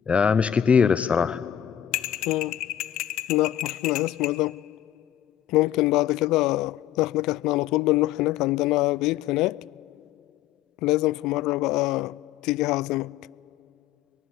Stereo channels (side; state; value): right; quieter; 11.2 dB